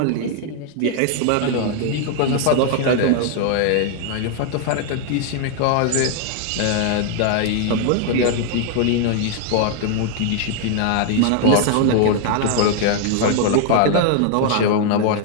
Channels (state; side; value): different; both; correlation 0.00